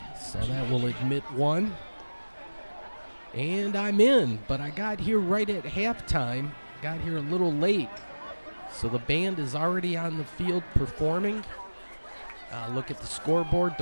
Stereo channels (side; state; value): both; inverted; correlation -1.00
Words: So that will admit one. And I'm in, but I got here right at halftime. Got here a little late. So the band is already on the field performing. Look at the scoreboard.